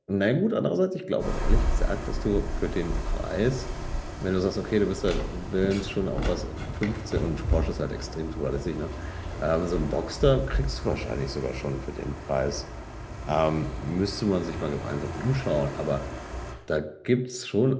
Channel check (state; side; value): identical; both; correlation 1.00